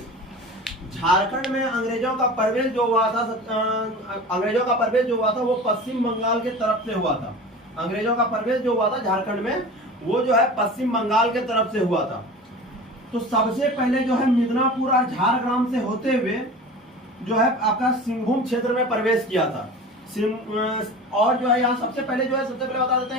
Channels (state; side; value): normal; both; correlation 0.36